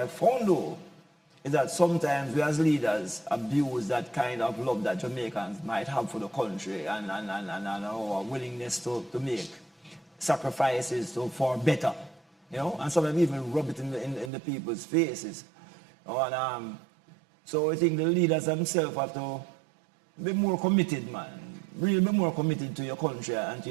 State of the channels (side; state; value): left; drops out; at 14.3 s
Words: found though is that sometimes we as leaders abuse that kind of love that Jamaicans might have for the country and our willingness to make sacrifices for better, and sometimes even rub it in the people's faces. And so I think the leaders themselves have to be more committed, man. Really be more committed to your country and to